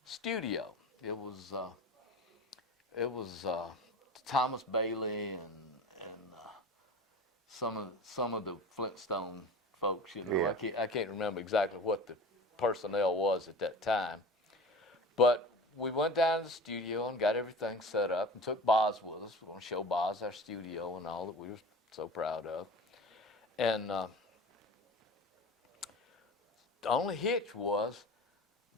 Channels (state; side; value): normal; both; correlation 0.36